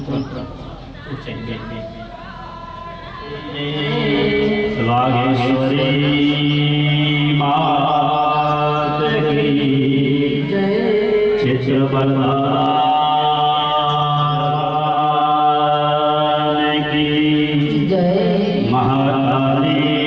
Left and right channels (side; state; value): both; identical; correlation 1.00